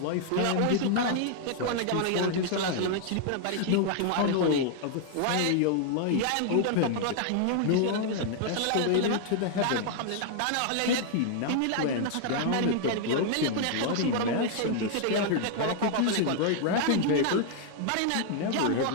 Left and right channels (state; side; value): different; both; correlation 0.00